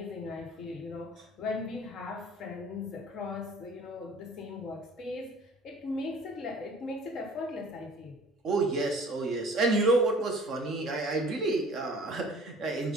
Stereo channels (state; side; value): normal; both; correlation 0.49